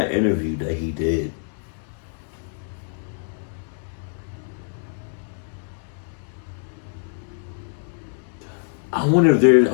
interview that he did, I wonder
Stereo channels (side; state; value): right; silent; digital silence